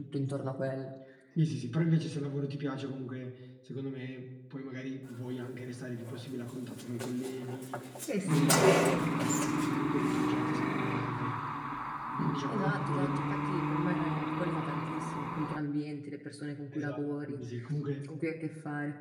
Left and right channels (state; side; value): identical; both; correlation 1.00